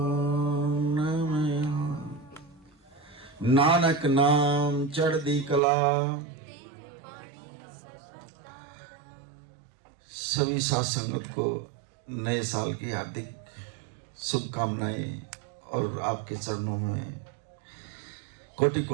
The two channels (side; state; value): left; drops out; at 5.6 s